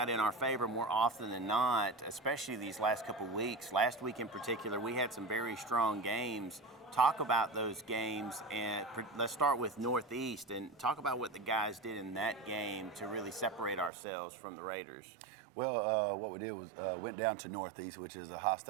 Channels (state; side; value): drops out; left; at 13.9 s